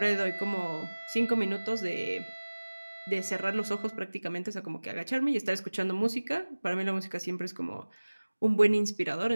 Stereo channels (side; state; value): both; inverted; correlation -1.00